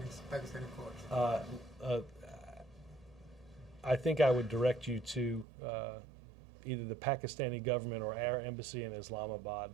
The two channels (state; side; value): drops out; left; at 5.5 s